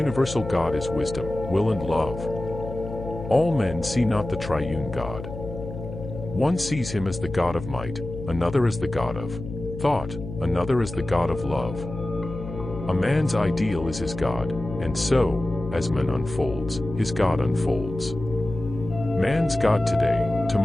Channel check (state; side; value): noise; left; hum, 10 dB below the sound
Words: God is wisdom, will and love. All men see not the triune God. One sees him as the God of might, another as the God of thought, another as the God of love. A man's ideal is his God, and so, as man unfolds, his God unfolds. Man's God today,